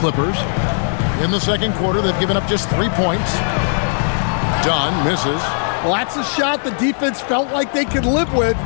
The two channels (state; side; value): silent; right; digital silence